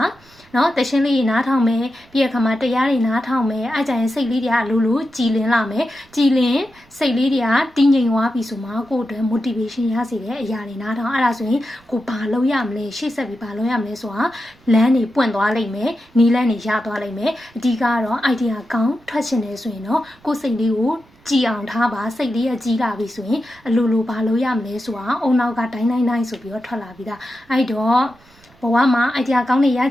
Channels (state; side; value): noise; right; rumble, 30 dB below the sound